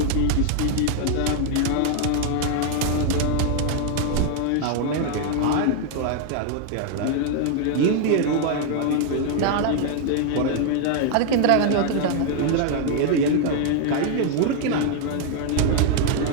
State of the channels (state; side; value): different; both; correlation 0.00